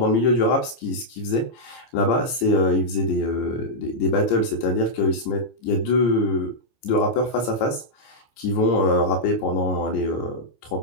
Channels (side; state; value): right; late; 14 ms